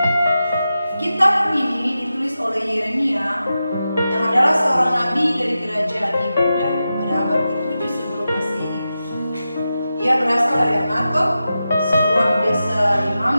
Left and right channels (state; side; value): inverted; both; correlation -0.91